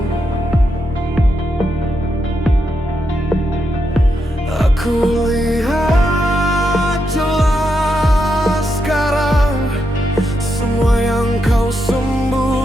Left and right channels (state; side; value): normal; both; correlation 0.83